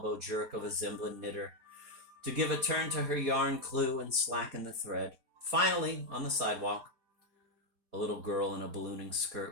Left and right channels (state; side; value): late; left; 4.2 ms